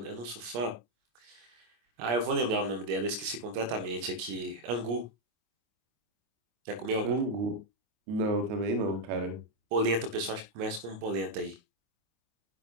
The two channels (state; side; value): late; left; 25 ms